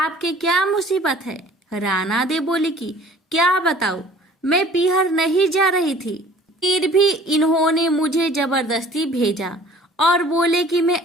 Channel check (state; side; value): normal; both; correlation 0.51